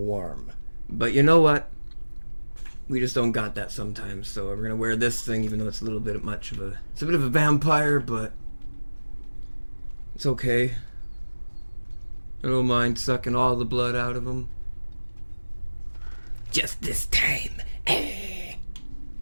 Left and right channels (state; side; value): inverted; both; correlation -1.00